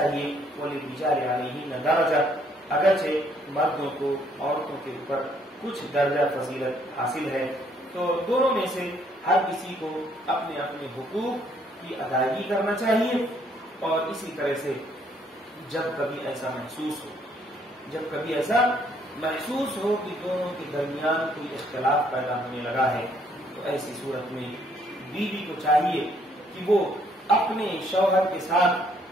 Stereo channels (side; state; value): both; normal; correlation 0.67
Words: وَلِلرِّجَالِ عَلَيْهِنَّ دَرَجَةٌ، اگرچہ مردوں کو عورتوں کے اوپر کچھ درجہ فضیلت حاصل ہے، تو دونوں میں سے ہر کسی کو اپنے اپنے حقوق کی ادائیگی کرنا چاہیے۔ اور اسی طرح سے جب کبھی ایسا محسوس ہو کہ دونوں کے درمیان کوئی اختلاف پیدا ہونے لگا ہے، تو ایسی صورت میں بیوی کو چاہیے کہ وہ اپنے شوہر کے ساتھ